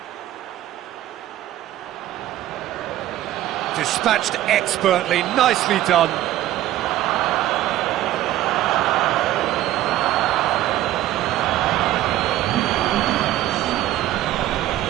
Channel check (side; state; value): left; quieter; 14.1 dB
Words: Dispatched expertly, nicely done.